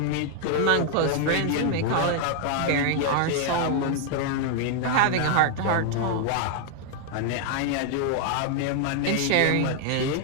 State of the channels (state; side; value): different; both; correlation 0.00